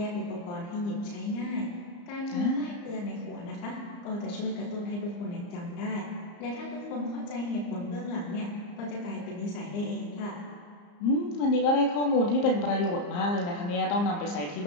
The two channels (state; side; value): late; right; 34 ms